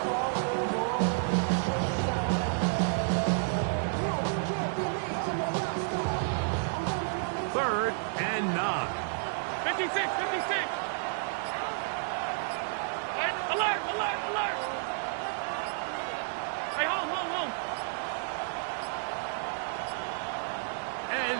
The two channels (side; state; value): left; silent; digital silence